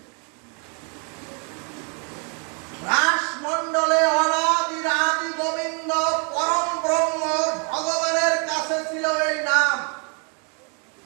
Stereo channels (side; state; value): left; quieter; 37.1 dB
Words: অনাদির আদি গোবিন্দ পরম ব্রহ্ম ভগবানের কাছে ছিল এই নাম।